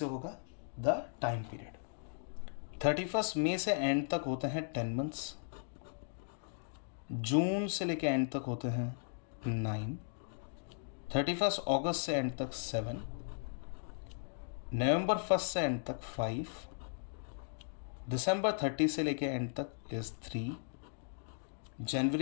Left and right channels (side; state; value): right; silent; digital silence